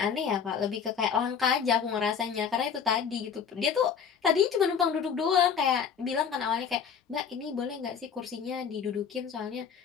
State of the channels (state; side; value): quieter; right; 7.1 dB